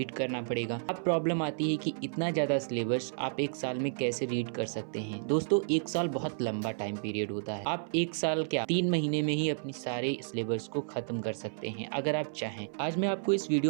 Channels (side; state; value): left; silent; 57 dB below the other